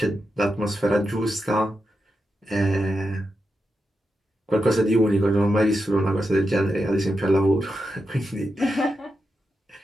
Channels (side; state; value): both; normal; correlation 0.87